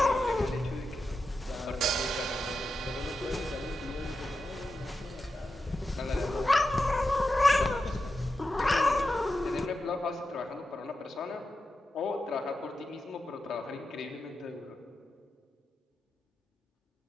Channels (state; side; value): normal; both; correlation 0.90